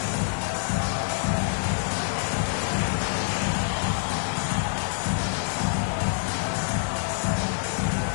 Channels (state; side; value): silent; right; digital silence